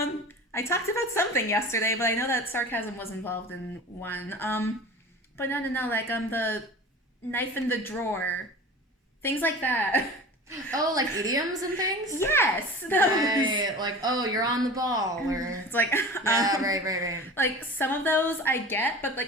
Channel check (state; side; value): normal; both; correlation 0.36